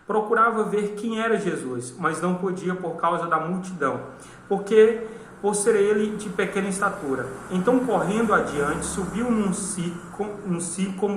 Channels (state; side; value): identical; both; correlation 1.00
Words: procurava ver quem era Jesus, mas não podia por causa da multidão, por ser ele de pequena estatura. Então, correndo adiante, subiu num